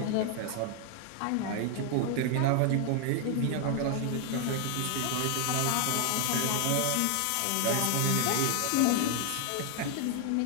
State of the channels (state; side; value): different; both; correlation 0.00